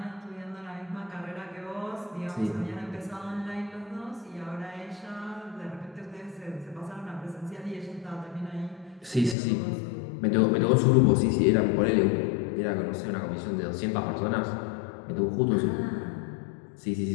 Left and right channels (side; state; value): right; drops out; at 9.3 s